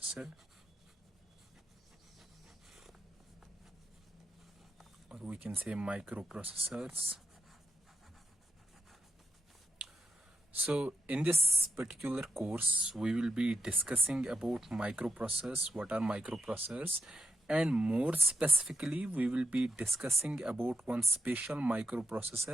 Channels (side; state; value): both; normal; correlation 0.82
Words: or we can say microprocessors. So in this particular course we will be discussing about microprocessors, what are microprocessors, and more specifically we will be discussing about one special